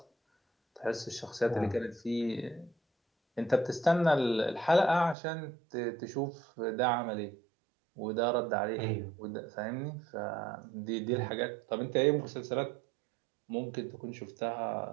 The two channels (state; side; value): drops out; left; at 5.2 s